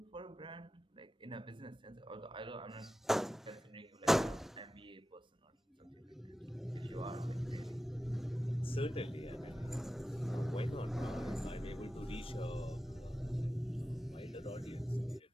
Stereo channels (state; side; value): normal; both; correlation 0.93